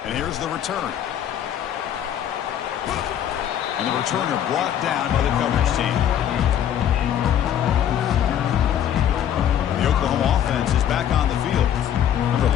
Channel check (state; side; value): quieter; right; 10.0 dB